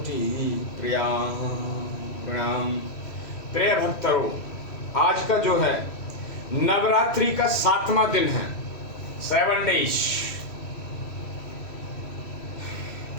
प्रणाम। प्रिय भक्तों, आज का जो है नवरात्रि का 7वां दिन है, 7 डेज।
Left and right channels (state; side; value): late; right; 3.1 ms